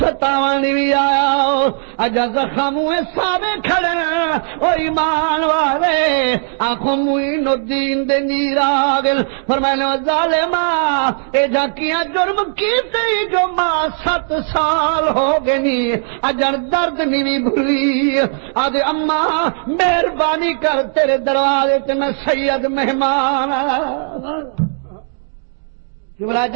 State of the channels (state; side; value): silent; left; digital silence